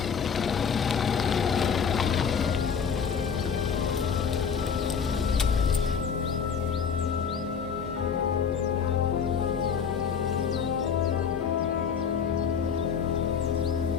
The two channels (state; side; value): quieter; right; 6.7 dB